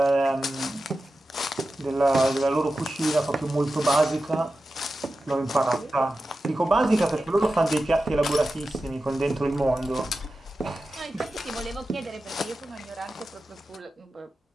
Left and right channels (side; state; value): both; normal; correlation 0.92